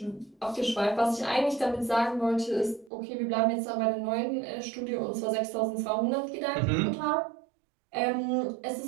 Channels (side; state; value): left; drops out; at 2.9 s